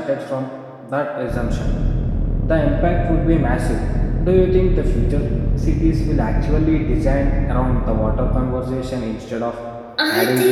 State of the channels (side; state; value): both; identical; correlation 1.00